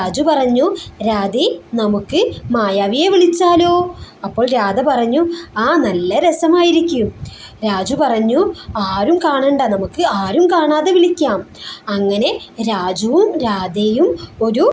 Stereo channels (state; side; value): identical; both; correlation 1.00